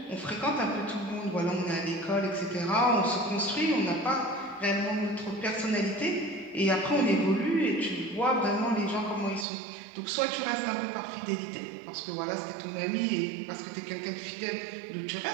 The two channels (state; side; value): drops out; left; at 9.5 s